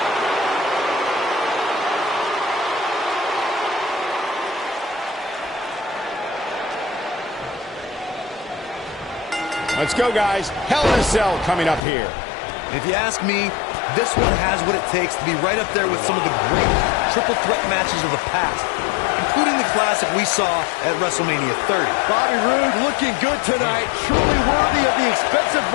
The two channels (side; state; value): right; drops out; at 11.8 s